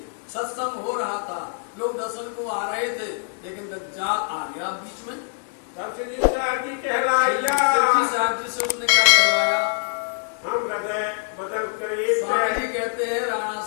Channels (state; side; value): silent; right; digital silence